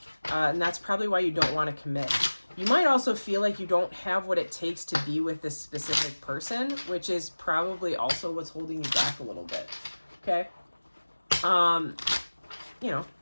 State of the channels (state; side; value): inverted; both; correlation -1.00